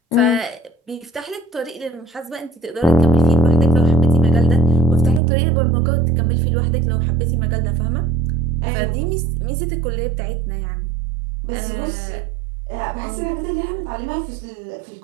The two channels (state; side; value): drops out; left; at 5.2 s